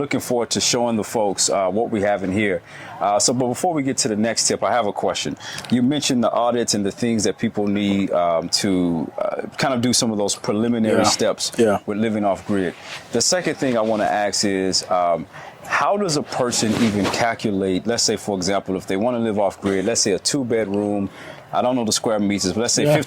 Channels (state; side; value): identical; both; correlation 1.00